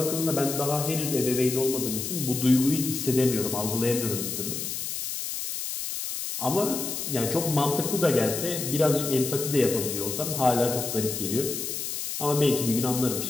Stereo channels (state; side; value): noise; left; hiss, 4 dB below the sound